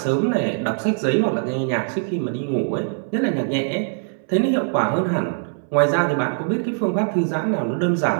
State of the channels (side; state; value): left; silent; digital silence